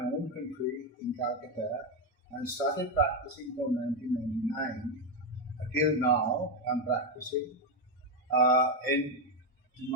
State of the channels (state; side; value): normal; both; correlation 0.07